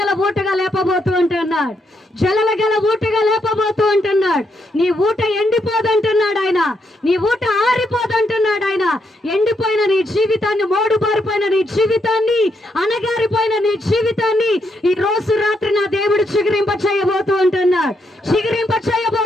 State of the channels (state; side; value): normal; both; correlation 0.78